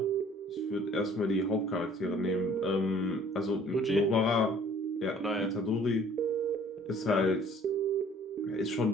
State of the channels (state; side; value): normal; both; correlation 0.54